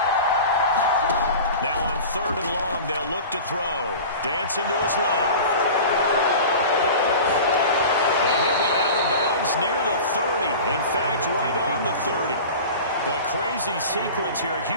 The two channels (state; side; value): inverted; both; correlation -0.35